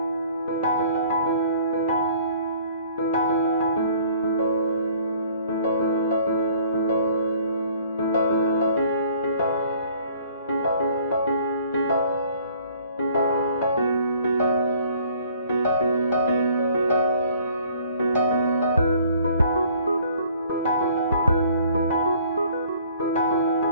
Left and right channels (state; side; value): inverted; both; correlation -0.56